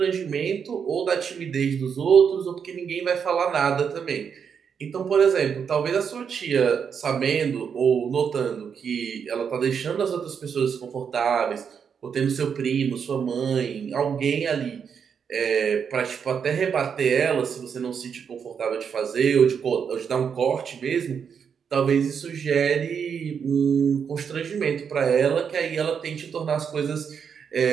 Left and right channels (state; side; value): quieter; left; 7.0 dB